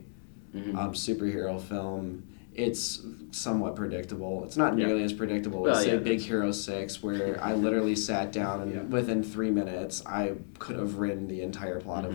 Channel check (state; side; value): silent; right; digital silence